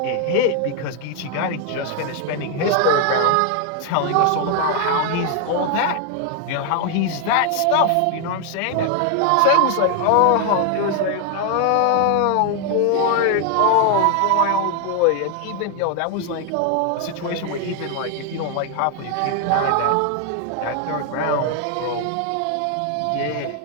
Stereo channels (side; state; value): both; different; correlation 0.00